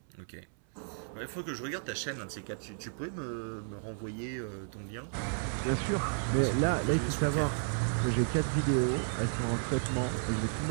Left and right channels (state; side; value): silent; left; 56 dB below the other